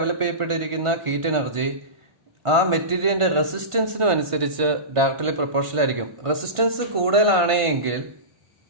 ചെയ്യപ്പെട്ടിരിക്കുന്ന ഹീറ്റ് എനർജി ആ മെറ്റീരിയലിന്റെ റെസിസ്റ്റൻസിനും അനുസരിച്ച് ഡയറക്ട്ലി പ്രൊപ്പോർഷണൽ ആയിരിക്കും. റെസിസ്റ്റൻസ് കൂടുതലാണെങ്കിൽ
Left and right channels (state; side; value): late; left; 1.5 ms